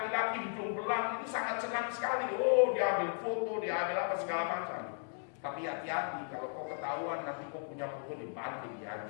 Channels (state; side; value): silent; right; digital silence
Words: hidung belang itu sangat senang sekali. Oh, dia ambil foto, dia ambil apa segala macam. Tapi hati-hati, kalau kau ketahuan nanti kau punya foto dibanting,